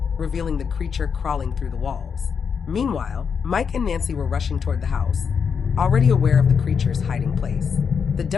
revealing the creature crawling through the walls. Meanwhile, Mike and Nancy were rushing toward the house, already aware of the creature's hiding place. The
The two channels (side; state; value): right; quieter; 6.4 dB